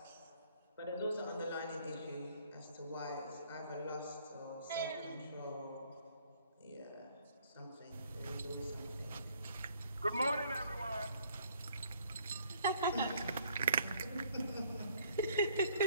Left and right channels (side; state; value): both; inverted; correlation -0.63